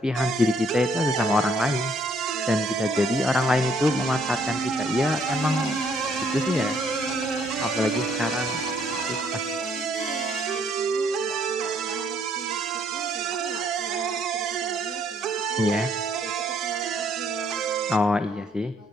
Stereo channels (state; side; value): normal; both; correlation 0.67